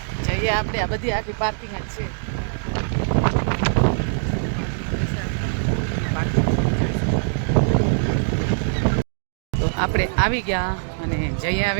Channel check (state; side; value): silent; left; digital silence